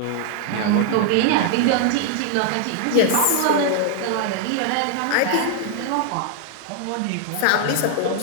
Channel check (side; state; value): both; different; correlation 0.00